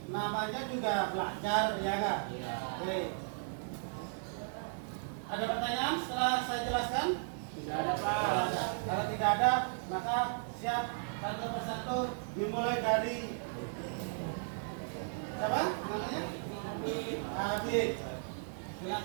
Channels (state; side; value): silent; left; digital silence